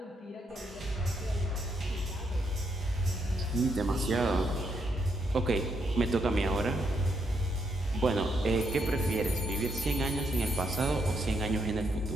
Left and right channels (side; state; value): both; normal; correlation 0.77